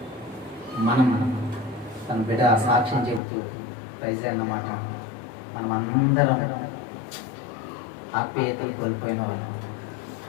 మనం తన బిడ్డ సాక్ష్యం చెబుతూ ప్రైజ్ అన్నమాట. మనం అందరం ఆప్యాయతలు కోల్పోయిన వాళ్ళు,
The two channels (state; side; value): drops out; right; at 3.2 s